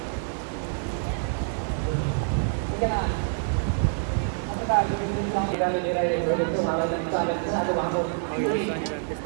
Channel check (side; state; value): left; silent; 61 dB below the other